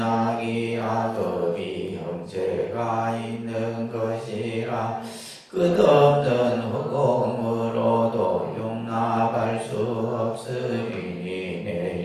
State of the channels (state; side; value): identical; both; correlation 1.00